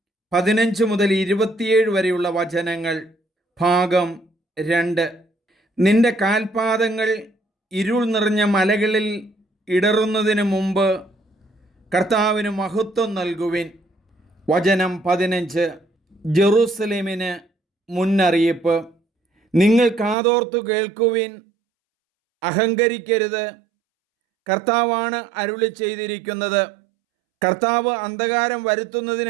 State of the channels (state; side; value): drops out; left; at 20.2 s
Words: 15 മുതൽ 27 വരെയുള്ള വചനങ്ങൾ. ഭാഗം 2. നിന്റെ കാൽപാദങ്ങൾ ഇരുൾ നിറഞ്ഞ മലകളിൽ ഇടറുന്നതിന് മുമ്പ് കർത്താവിന് മഹത്വം നൽകുവിൻ. വചനം 15. ജെറൂസലേമിന് മുന്നറിയിപ്പ്. നിങ്ങൾ കാതോർത്തു കേൾക്കുവിൻ, അഹങ്കരിക്കരുത്. കർത്താവാണ് അരുളി ചെയ്തിരിക്കുന്നത്. കർത്താവ് അന്ധകാരം